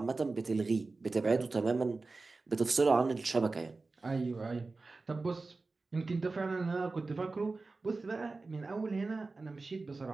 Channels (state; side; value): quieter; left; 3.7 dB